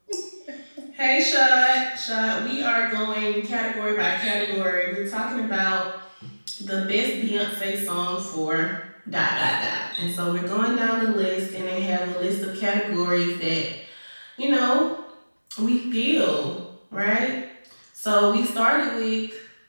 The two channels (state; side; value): inverted; both; correlation -1.00